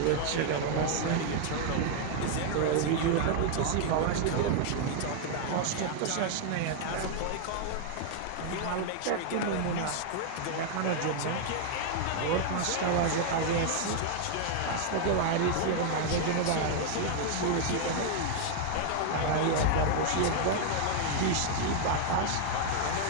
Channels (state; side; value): different; both; correlation 0.00